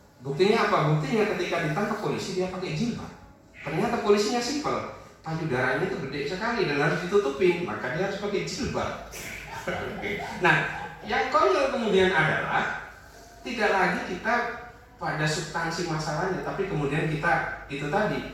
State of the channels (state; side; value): identical; both; correlation 1.00